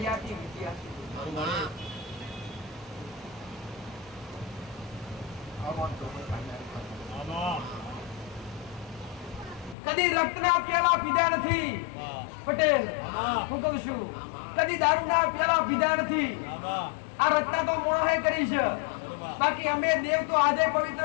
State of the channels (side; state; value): right; drops out; at 9.8 s